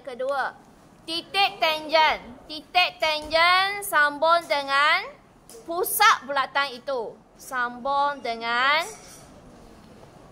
kedua, titik tangent. Titik tangent sambung dengan pusat bulatan itu. Sambung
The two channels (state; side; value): identical; both; correlation 1.00